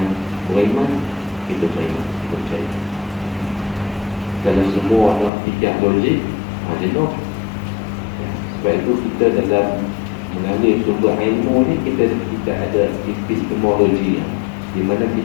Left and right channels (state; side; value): drops out; right; at 5.3 s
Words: beriman, kita beriman, kita percaya. Kalau semua nak fikir logik, jenuh. Sebab itu kita dalam mengambil sumber ilmu ni, kita ada epistemologi di mana